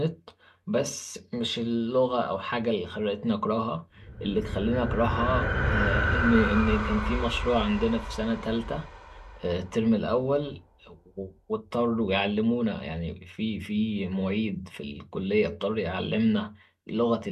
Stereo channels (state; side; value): identical; both; correlation 1.00